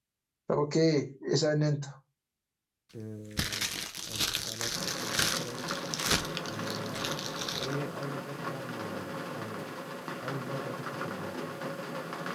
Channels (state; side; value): identical; both; correlation 1.00